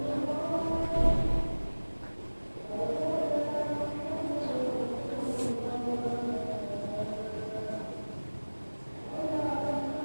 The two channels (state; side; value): inverted; both; correlation -1.00